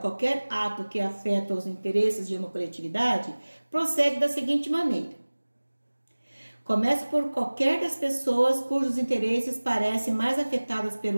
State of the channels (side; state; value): both; inverted; correlation -1.00